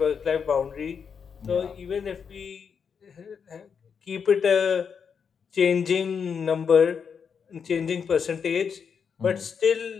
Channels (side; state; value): right; quieter; 6.6 dB